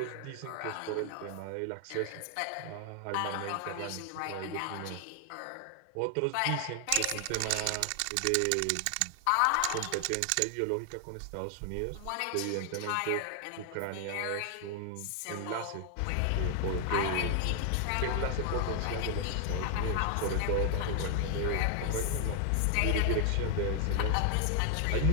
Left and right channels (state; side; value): different; both; correlation 0.00